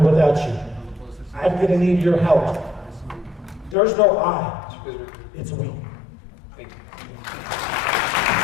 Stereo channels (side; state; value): right; drops out; at 3.8 s